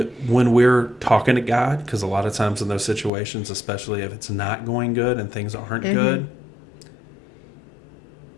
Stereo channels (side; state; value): right; drops out; at 3.1 s